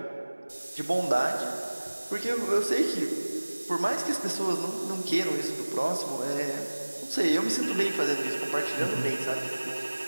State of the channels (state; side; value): inverted; both; correlation -1.00